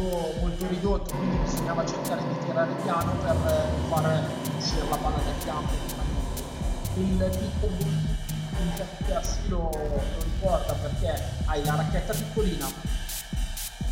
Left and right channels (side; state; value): both; identical; correlation 1.00